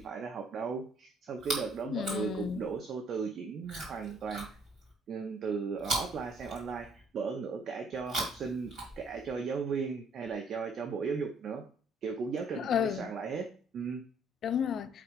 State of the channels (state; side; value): normal; both; correlation 0.63